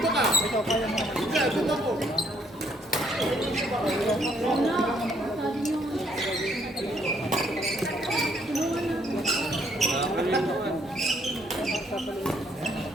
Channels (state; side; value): normal; both; correlation 0.68